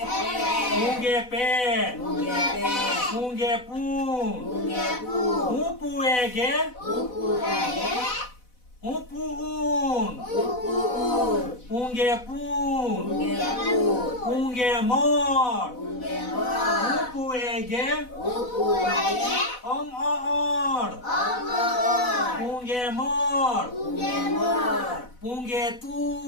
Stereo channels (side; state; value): right; late; 4.0 ms